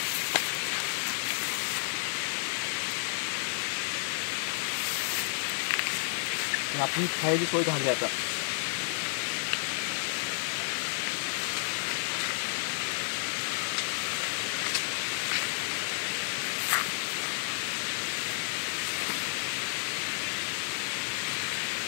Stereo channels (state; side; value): silent; right; 57 dB below the other